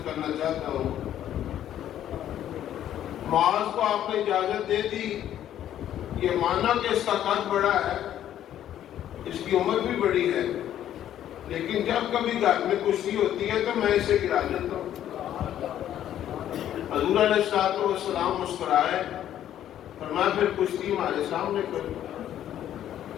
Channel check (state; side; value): quieter; right; 11.2 dB